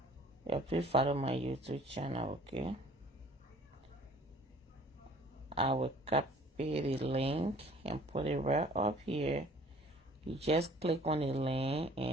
Yeah, please follow my YouTube channel, okay? I will copy the link and put it right up here. You just click on the link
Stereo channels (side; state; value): both; normal; correlation 0.52